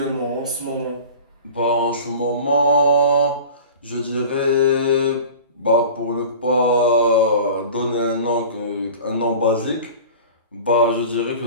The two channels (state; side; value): inverted; both; correlation -0.39